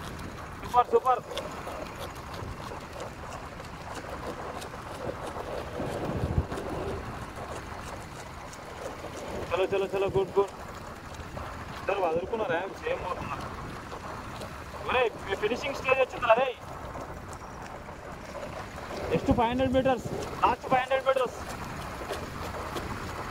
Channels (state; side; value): identical; both; correlation 1.00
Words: సూపర్ సూపర్. చలో చలో చలో గుడ్ గుడ్. ఇద్దరు వదులుకున్నారా? సేమ్ పోతున్నారు. ఒరే ఫినిషింగ్ స్టేజ్ వచ్చింది అదే. Next 500 metres, last 500 metres.